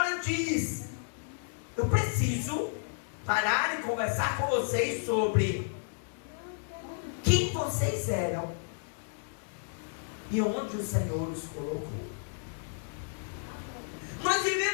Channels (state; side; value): silent; right; digital silence